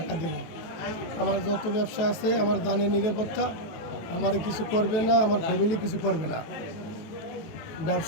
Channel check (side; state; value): right; late; 18 ms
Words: দেব। আমার যত ব্যবসা আছে, আমার দানের নিরাপত্তা, আমার কিছু করবে না, আমার ফ্যামিলি কিছু করবে না,